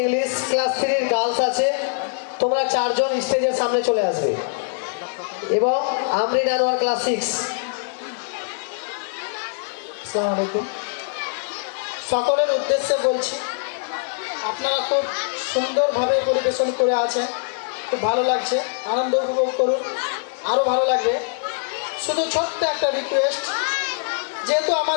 English class 3 এর গার্লস আছে। তোমরা চারজন স্টেজের সামনে চলে আসবে এবং আমরিন আনোয়ার ক্লাস 6। আসসালামু আলাইকুম। সকলের উদ্দেশ্যে বলছি, আপনারা খুব সুন্দরভাবে পরিবেশন করে আছেন, খুব ভালো লাগছে, আনন্দ উপভোগ করুন, আরও ভালো লাগবে। শুধু ছোট্ট একটা রিকোয়েস্ট, যেহেতু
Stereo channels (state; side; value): silent; right; digital silence